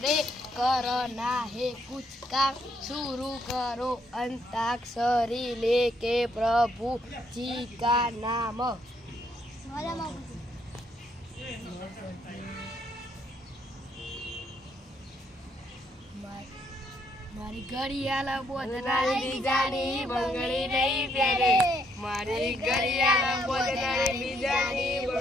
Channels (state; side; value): normal; both; correlation 0.72